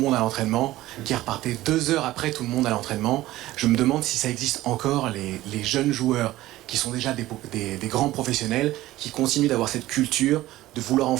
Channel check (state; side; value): quieter; left; 16.2 dB